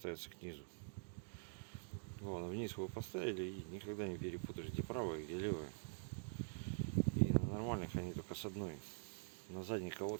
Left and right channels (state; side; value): silent; left; digital silence